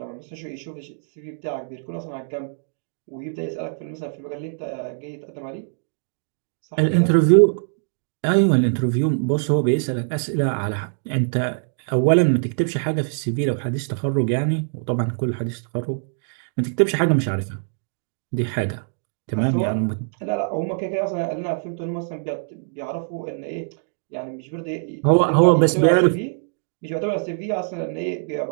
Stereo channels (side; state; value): left; silent; digital silence